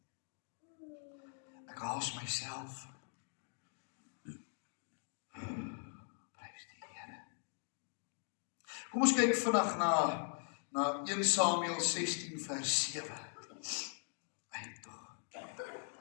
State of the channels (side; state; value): right; silent; 51 dB below the other